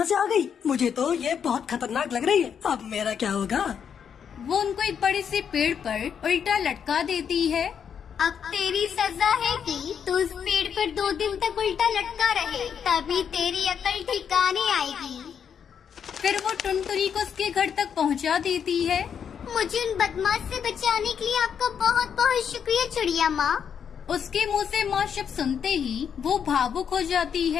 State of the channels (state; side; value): quieter; right; 7.6 dB